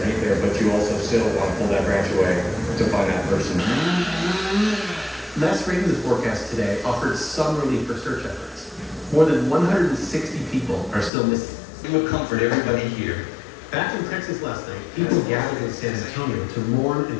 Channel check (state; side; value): drops out; right; at 11.1 s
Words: there, but you also still want to pull that branch away to find that person. Last Ravens forecast today offered some relief for search efforts. More than 160 people are still missing. It will comfort everybody here. Back in Texas last night, people gathered in San Antonio to mourn